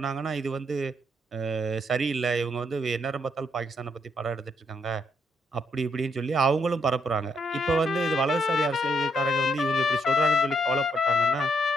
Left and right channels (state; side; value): normal; both; correlation 0.75